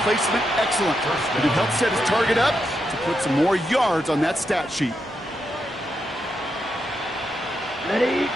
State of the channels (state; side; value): normal; both; correlation 0.83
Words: placement, excellent. And it helped set his target up to put some more yards on that stat sheet. Ready?